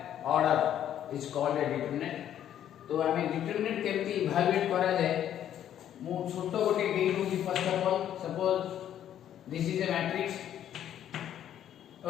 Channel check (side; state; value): right; quieter; 10.6 dB